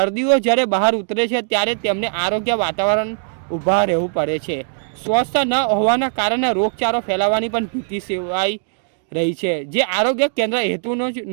જ્યારે બહાર ઉતરે છે ત્યારે તેમને આરોગ્ય વાતાવરણ ઊભા રહેવું પડે છે। સ્વચ્છતા ન હોવાના કારણે રોગચાળો ફેલાવાની પણ ભીતિ સેવાઈ રહી છે, જે આરોગ્ય કેન્દ્ર હેતુનો જ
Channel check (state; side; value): silent; left; digital silence